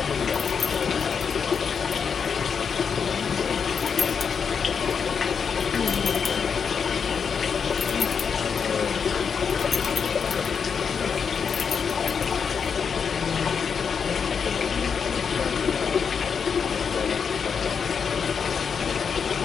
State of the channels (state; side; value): quieter; right; 6.4 dB